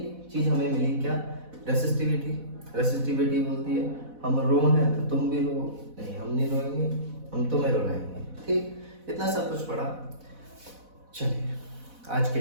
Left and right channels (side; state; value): left; late; 4.1 ms